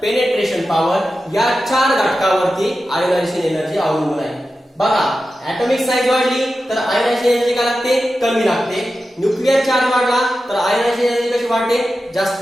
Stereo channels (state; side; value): normal; both; correlation 0.92